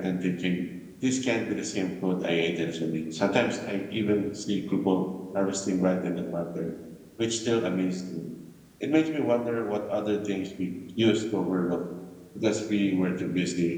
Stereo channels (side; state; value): both; identical; correlation 1.00